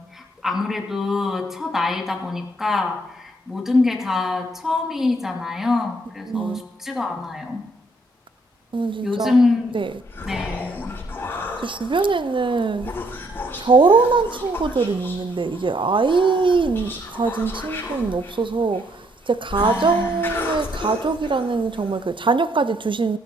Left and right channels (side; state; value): both; normal; correlation 0.69